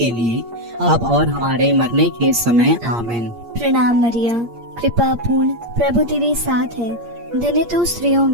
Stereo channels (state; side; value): late; left; 8.6 ms